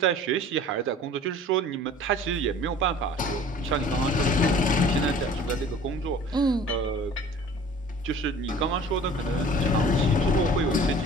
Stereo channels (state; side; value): normal; both; correlation 0.47